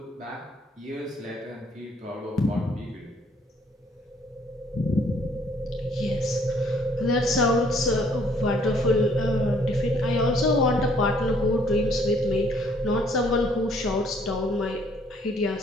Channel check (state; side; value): normal; both; correlation 0.63